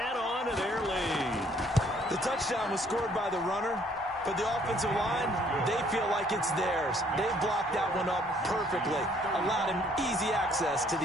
on to their lead. The touchdown was scored by the runner, but the offensive line, they feel like it's theirs. They've blocked that one up perfectly, allowed him easy access to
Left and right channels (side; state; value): both; normal; correlation 0.63